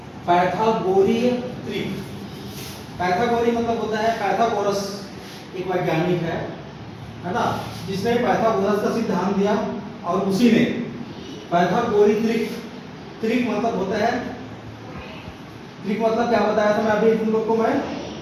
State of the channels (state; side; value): identical; both; correlation 1.00